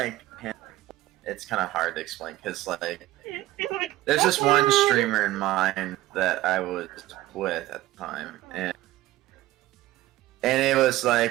it's kind of hard to explain because like there's just one streamer in mind that I was with at the time, and And it was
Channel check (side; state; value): left; quieter; 16.2 dB